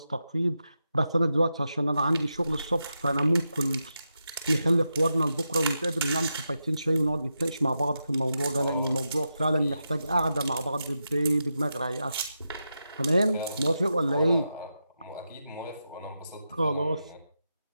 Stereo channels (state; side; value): inverted; both; correlation -0.88